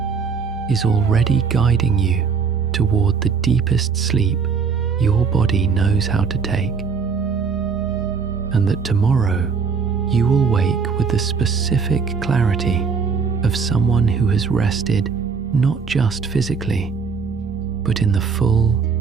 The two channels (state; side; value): quieter; left; 5.6 dB